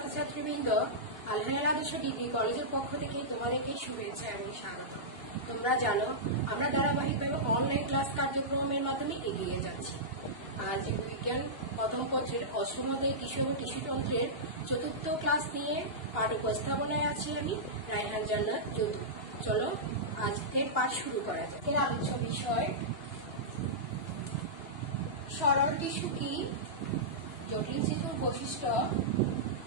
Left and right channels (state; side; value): late; right; 2.8 ms